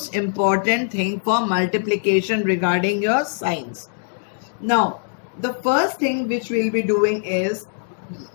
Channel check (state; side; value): silent; right; 64 dB below the other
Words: important thing for multiplication regarding your signs. Now, the first thing which we'll be doing is